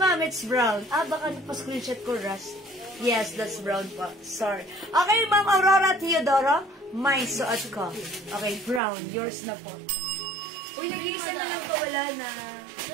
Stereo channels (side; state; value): left; drops out; at 8.8 s